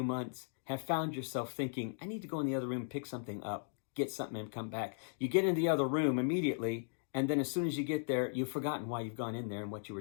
months have found yourself thinking, I need to go in the other room, pick something up, get something and come back? You get in the other room immediately, and then as soon as you get there, you've forgotten why you've gone in there and what you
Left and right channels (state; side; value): silent; right; digital silence